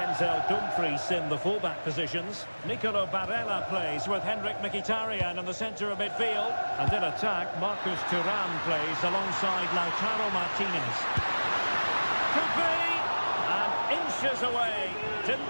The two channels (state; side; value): inverted; both; correlation -1.00